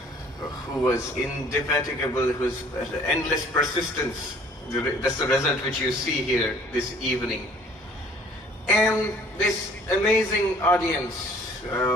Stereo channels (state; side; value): normal; both; correlation 0.55